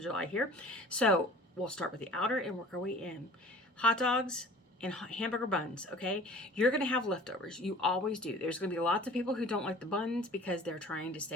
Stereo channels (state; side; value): normal; both; correlation 0.46